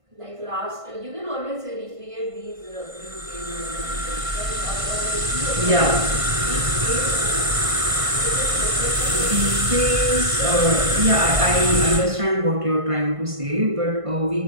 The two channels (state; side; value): late; left; 1.5 ms